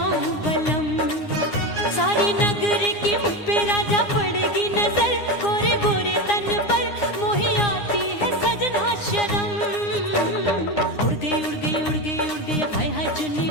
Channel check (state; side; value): late; right; 9.8 ms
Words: बलम। सारी नगर की मुझ पे राजा पड़ेगी नजर, गोरे गोरे तन पर मोही आती है सजना शर्म। उड़ गई उड़ गई उड़ गई उड़ गई हाय हाय चुन्नी